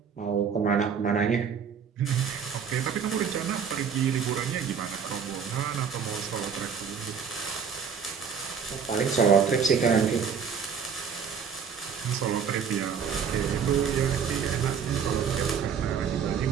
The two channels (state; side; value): quieter; left; 6.8 dB